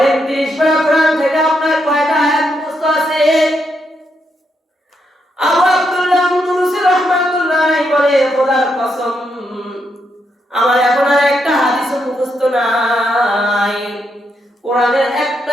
30 পারা কোরআন থেকে আপনার কয়টা আয়াত মুখস্থ আছে? আবু আব্দুল্লাহ আন্দলুসি রাহমাতুল্লাহ বলে, খোদার কসম, আমার এখন আর একটা হাদিসও মুখস্থ নাই, কোরআনের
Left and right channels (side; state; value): both; normal; correlation 0.80